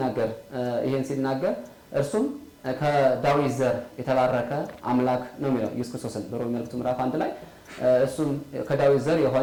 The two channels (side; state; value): both; identical; correlation 1.00